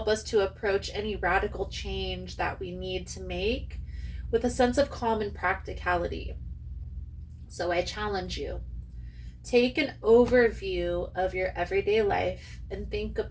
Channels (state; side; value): identical; both; correlation 1.00